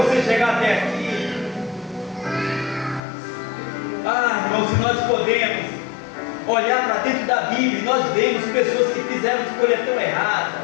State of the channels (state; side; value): drops out; right; at 3.0 s